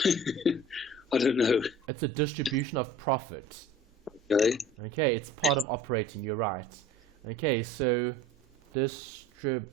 I don't know. It's a distribution of profit. Okay. Okay, it's part of operating, you're right. Okay, so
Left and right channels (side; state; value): both; normal; correlation 0.43